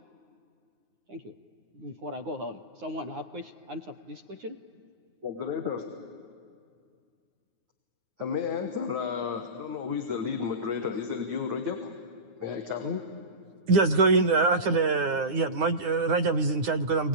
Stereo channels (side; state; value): left; late; 9.5 ms